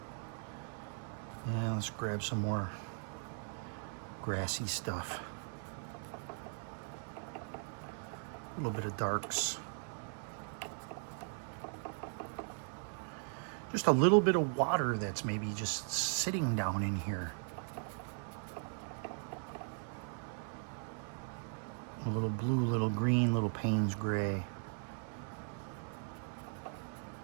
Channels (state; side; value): silent; left; 52 dB below the other